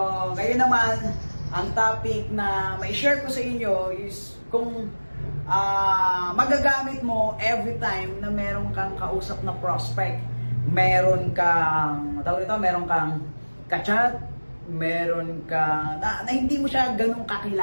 ngayon naman, ang topic na may share ko sa inyo is kung magagamit mo every time na meron kang kausap na prospect. Meron kang, meron kang kachat, meron kang, na hindi mo siya ganun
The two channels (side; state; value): both; inverted; correlation -1.00